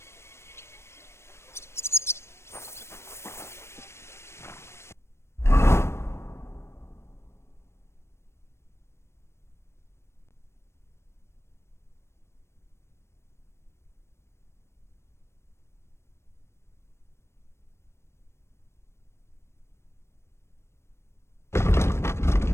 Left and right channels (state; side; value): late; right; 0.13 ms